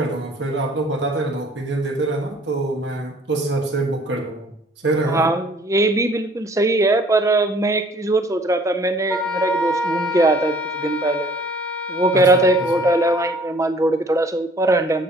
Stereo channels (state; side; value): normal; both; correlation 0.56